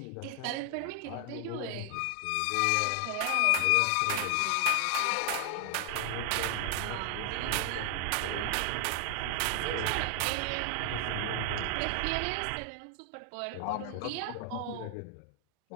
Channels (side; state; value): both; different; correlation 0.00